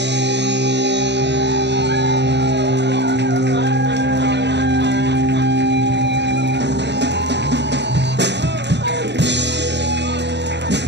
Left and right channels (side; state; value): left; late; 0.50 ms